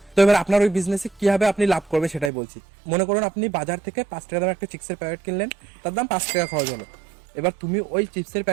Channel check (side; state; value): left; drops out; at 2.3 s